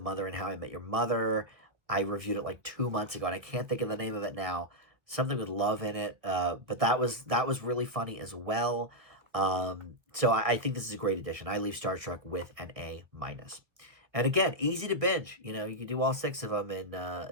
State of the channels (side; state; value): left; late; 1.4 ms